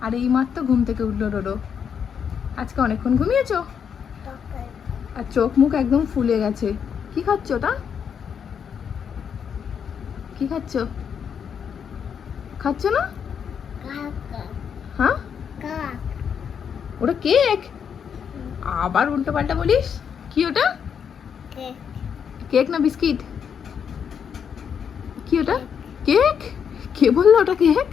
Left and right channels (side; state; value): right; quieter; 7.4 dB